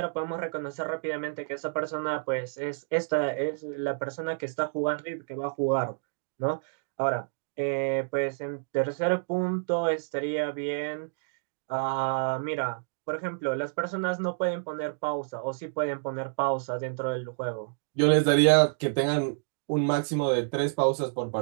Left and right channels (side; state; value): left; silent; digital silence